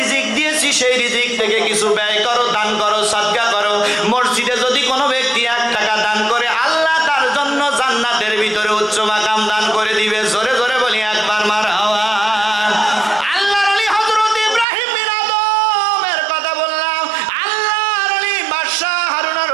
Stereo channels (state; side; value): drops out; left; at 14.7 s